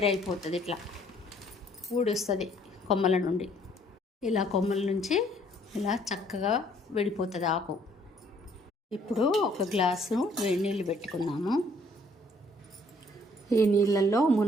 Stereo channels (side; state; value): both; normal; correlation 0.62